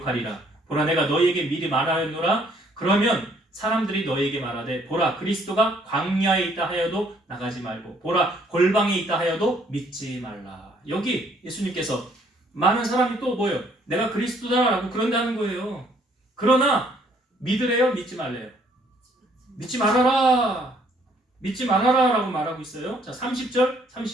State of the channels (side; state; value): both; normal; correlation 0.64